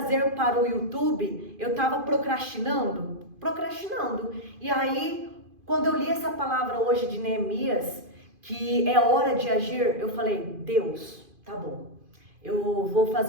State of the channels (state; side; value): late; left; 2.5 ms